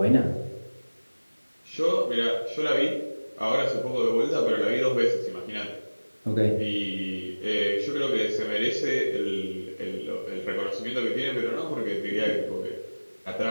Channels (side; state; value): both; inverted; correlation -1.00